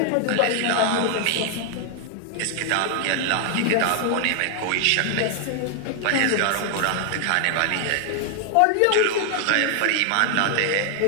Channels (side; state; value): both; different; correlation 0.00